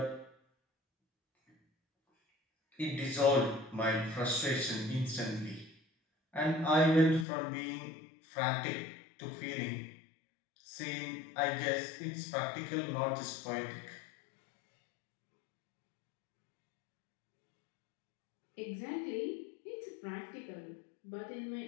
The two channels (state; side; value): drops out; right; at 7.2 s